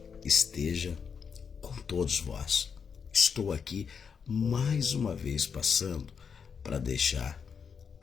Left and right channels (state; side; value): quieter; right; 6.4 dB